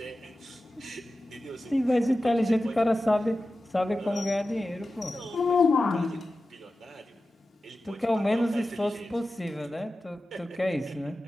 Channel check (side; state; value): both; normal; correlation 0.94